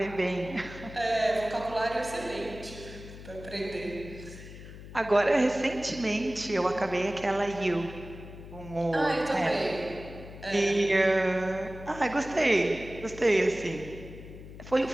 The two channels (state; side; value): noise; left; hum, 14 dB below the sound